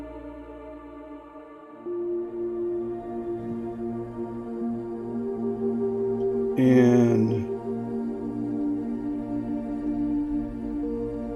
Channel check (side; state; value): both; identical; correlation 1.00